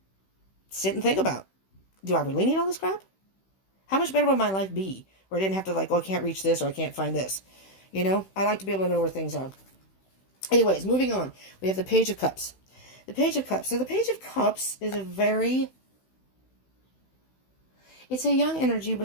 sit and think about. Do I really need all this crap? How much better would my life be? Where I didn't have to I can't reach this or I can't find this. I like to be able to know where things are. Anyways, moving on. We have the Page of Cups. The Page of Cups. So the Page of Cups is it's a young energy,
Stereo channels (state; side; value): late; right; 16 ms